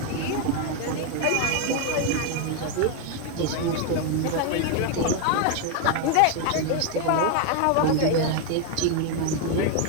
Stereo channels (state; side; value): different; both; correlation 0.01